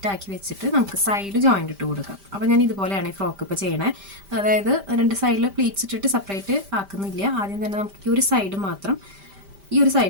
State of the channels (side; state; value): left; late; 5.1 ms